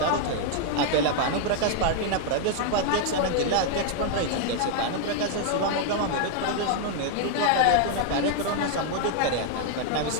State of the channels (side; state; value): both; different; correlation 0.00